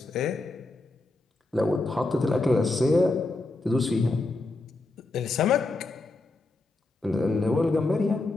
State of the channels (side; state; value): right; quieter; 3.1 dB